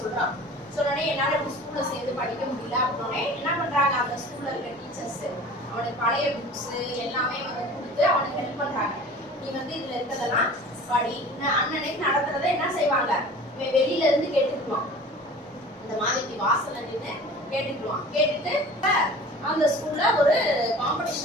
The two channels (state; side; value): normal; both; correlation 0.42